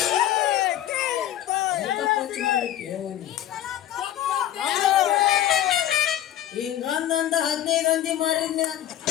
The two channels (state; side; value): quieter; right; 11.9 dB